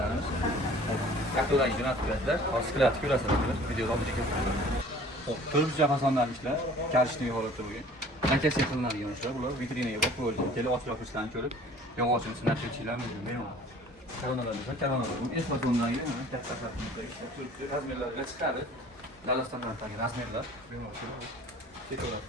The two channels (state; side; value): normal; both; correlation 0.49